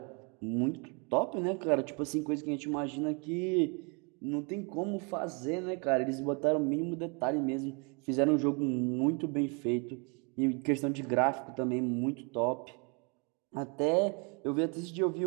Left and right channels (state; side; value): quieter; left; 33.7 dB